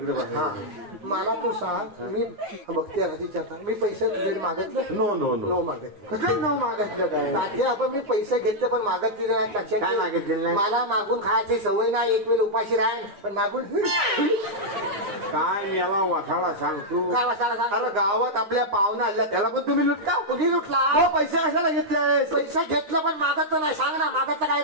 मला तू सांग मी बघते विचारता मी पैसे तुझ्याकडे मागितले नो मागितले नो मागितलं काय आपण मी पैसे घेतले पण मागितले नाही लक्षात काय मागितलेलं नाही मला मागून खायची सवय नाही एक वेळ उपाशी राहील पण मागून काय मेवा वाठाडा सांग तू अरे गावात आपल्या पाहुणा आल्या त्याला पण तुम्ही लुटता कुठे लुटला पैसे कशाला घेतले पैसे घेतलं पण मागत नाही सांग ना मागत काय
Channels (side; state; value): left; late; 9.7 ms